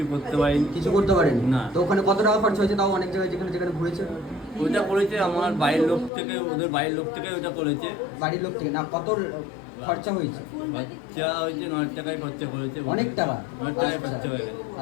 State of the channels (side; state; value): right; drops out; at 6.1 s